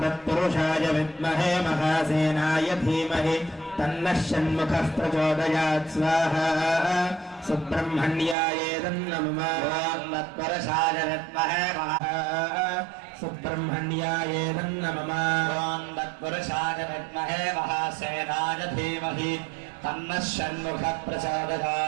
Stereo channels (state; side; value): drops out; left; at 8.3 s